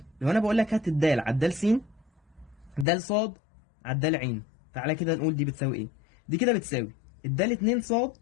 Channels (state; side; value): drops out; right; at 2.9 s